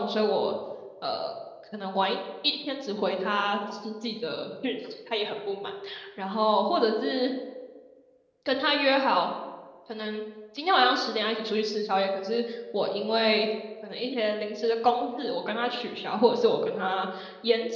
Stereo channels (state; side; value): identical; both; correlation 1.00